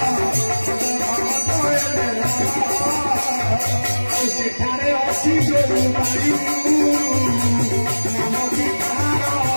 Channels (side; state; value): both; inverted; correlation -1.00